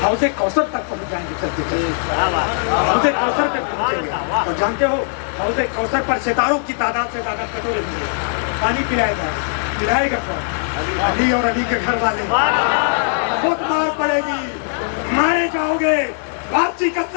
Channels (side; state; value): right; silent; 66 dB below the other